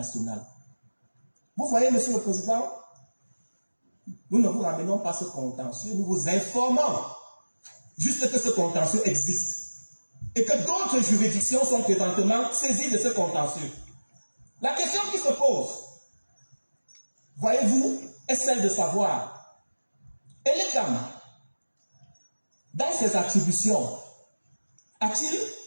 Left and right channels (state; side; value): inverted; both; correlation -1.00